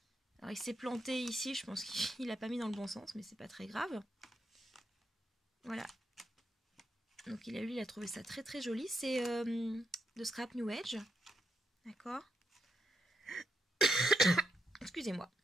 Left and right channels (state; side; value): normal; both; correlation 0.82